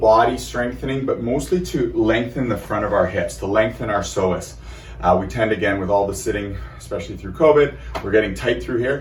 strengthening, but mostly to lengthen the front of our hips, to lengthen our psoas. We tend, again, with all the sitting, especially through COVID, we're getting tight through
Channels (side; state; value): both; identical; correlation 1.00